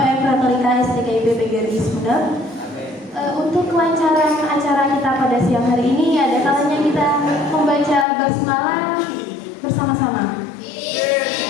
Retorika STKIP PGRI Sumeneb. Untuk kelancaran acara kita pada siang hari ini, ada kalanya kita membaca basmalah bersama-sama.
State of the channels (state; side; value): drops out; right; at 8.1 s